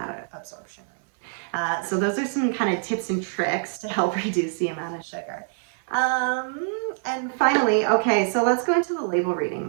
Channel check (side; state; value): left; silent; 62 dB below the other